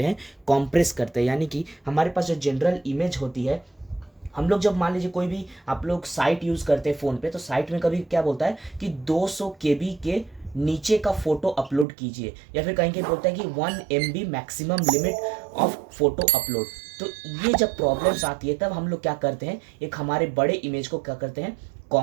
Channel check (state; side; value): drops out; left; at 11.9 s